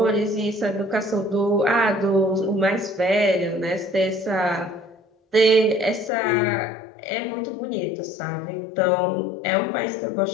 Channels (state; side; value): drops out; right; at 6.1 s